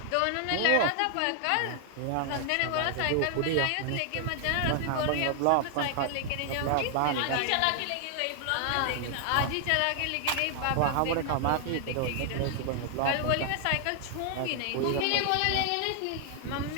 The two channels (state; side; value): different; both; correlation 0.00